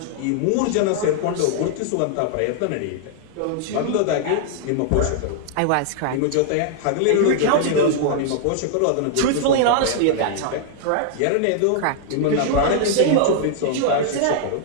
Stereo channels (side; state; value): both; different; correlation -0.01